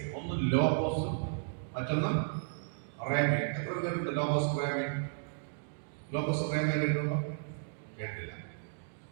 ഒന്ന് ലോഗോസും മറ്റൊന്ന് റേമേ. എത്ര പേരുണ്ട് ലോഗോസ് റേമേ? ലോഗോസ് റേമേ കേട്ടിട്ടുണ്ടോ? കേട്ടില്ല.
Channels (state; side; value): silent; left; digital silence